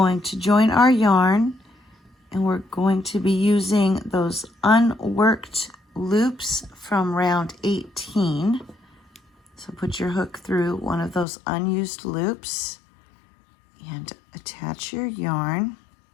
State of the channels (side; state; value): right; drops out; at 11.2 s